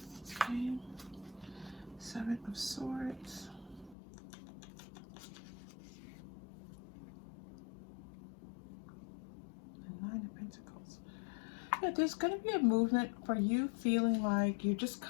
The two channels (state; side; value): drops out; right; at 4.0 s